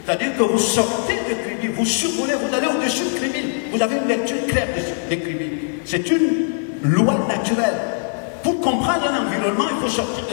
C'est-à-dire que vous sortez de Kribi, vous survolez, vous allez au-dessus de Kribi. Vous avez une lecture claire de Kribi. C'est une loi naturelle. Pour comprendre un environnement, il faut sortir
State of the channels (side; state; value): right; silent; digital silence